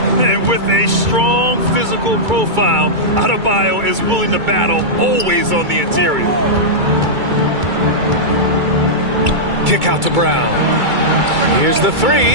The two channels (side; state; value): left; late; 2.3 ms